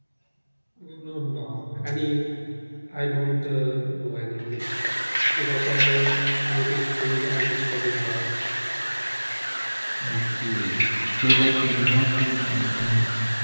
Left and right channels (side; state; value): both; inverted; correlation -1.00